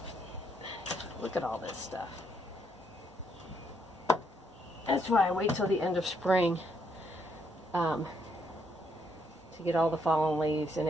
Look at all this stuff. That's why I wait till the end of spring to get all the fallen leaves and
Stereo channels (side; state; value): both; normal; correlation 0.74